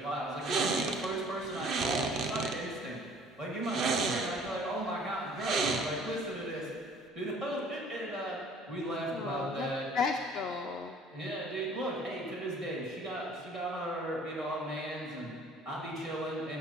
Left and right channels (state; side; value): normal; both; correlation 0.53